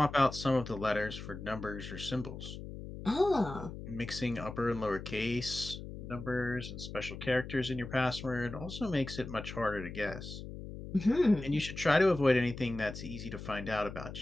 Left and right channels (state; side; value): noise; left; hum, 10 dB below the sound